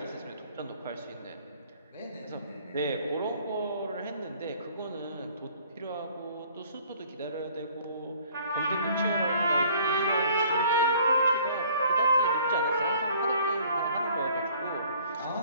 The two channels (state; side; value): inverted; both; correlation -0.56